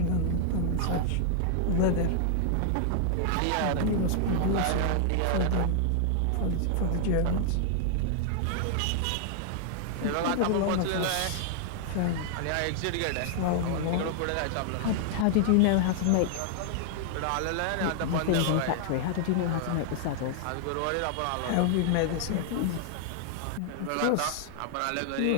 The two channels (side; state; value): both; different; correlation 0.00